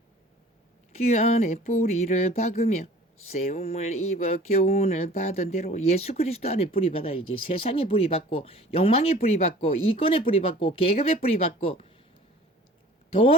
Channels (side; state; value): both; normal; correlation 0.47